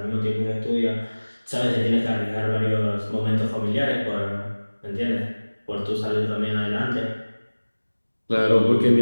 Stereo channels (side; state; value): both; inverted; correlation -1.00